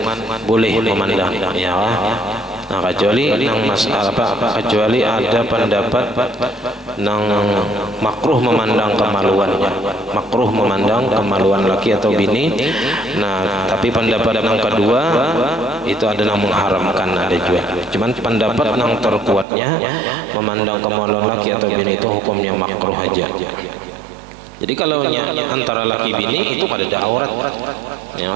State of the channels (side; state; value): left; drops out; at 19.5 s